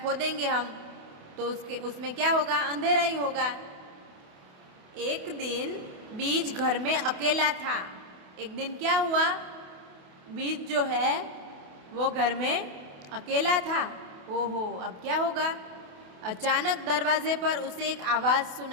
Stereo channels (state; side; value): late; left; 28 ms